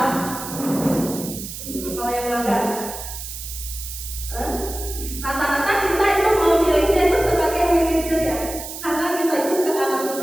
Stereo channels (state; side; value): noise; right; hiss, 9 dB below the sound